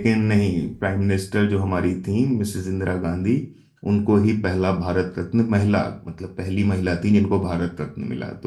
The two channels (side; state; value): both; identical; correlation 1.00